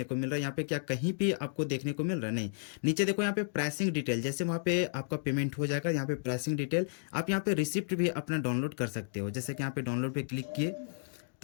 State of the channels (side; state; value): right; silent; digital silence